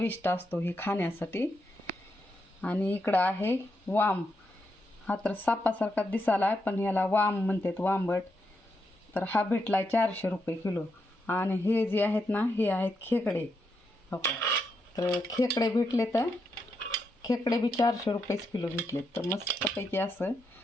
असतो ही खाण्यासाठी. आणि इकडं आहे वाम. हा तर सापासारखा दिसाला पण ह्याला वाम म्हणतात, वांबट. तर हा भेटला 400 रुपये किलो. आणि हे जे आहेत ना हे आहेत खेकडे. तर खेकडे भेटले, तर खेकडे बी 400 रुपयेच किलो भेटले. तर मस्तपैकी असं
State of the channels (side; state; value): both; normal; correlation 0.82